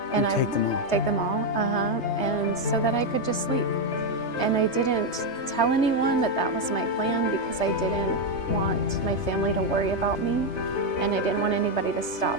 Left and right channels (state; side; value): late; right; 3.3 ms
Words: And I take them all, and so that I could just sleep. And I didn't tell anyone that that was my plan because I didn't want my family to worry about me, and I didn't want anybody to stop